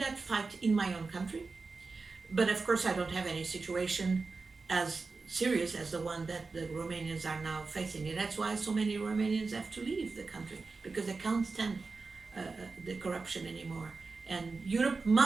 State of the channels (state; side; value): quieter; left; 4.1 dB